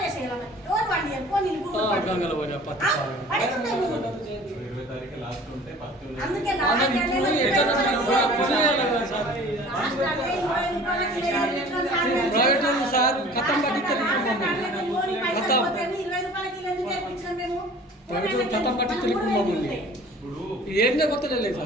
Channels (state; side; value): normal; both; correlation 0.46